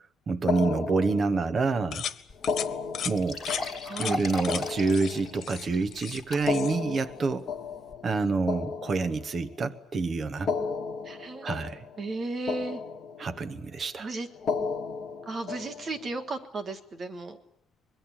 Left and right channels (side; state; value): both; normal; correlation 0.81